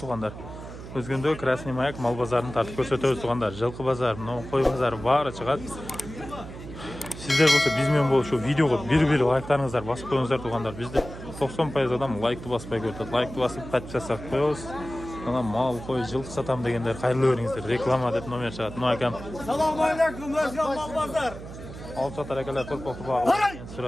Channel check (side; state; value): right; noise; hum, 12 dB below the sound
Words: Özgöndө Krasный Mаяк mal bazarini tartib ko'rsatamiz tug'andar. Жылқы bazar, qo'y bazari bari chiqadi. Sizler bo'lsa bizmen bo'lib shu videoga bir like'laringizni bosib qo'yingizlar tug'andar. Bizda 90% odam like'ni bosmay ko'radi. Like'ni bosib подписаться qilib qo'yamiz. Ana mal qo'y жылқы satam deganlar xayrli o'ringizlar. Reklama deb nomer chiqadi. No akam. Assalomu alaykum Özgön mal bazar. Olib sotar akalar to'rpoqni bog'i.